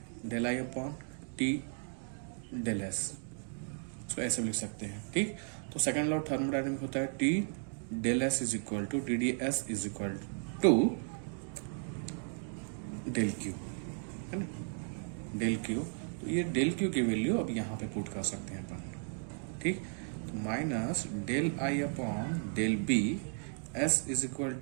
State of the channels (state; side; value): silent; left; 54 dB below the other